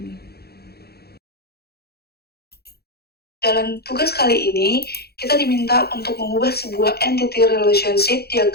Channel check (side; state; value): right; late; 0.46 ms